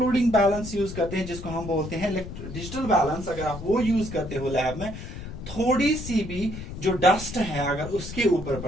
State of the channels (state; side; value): noise; left; rumble, 10 dB below the sound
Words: बैलेंस यूज करते हैं जिसको हम बोलते हैं डिजिटल बैलेंस, अगर आप वो यूज करते हो लैब में, थोड़ी सी भी जो डस्ट है अगर उसके ऊपर